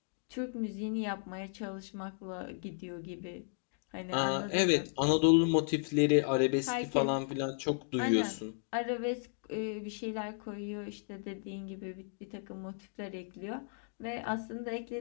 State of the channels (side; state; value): right; silent; digital silence